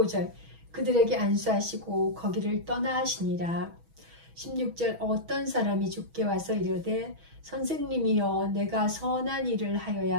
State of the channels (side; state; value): left; late; 6.2 ms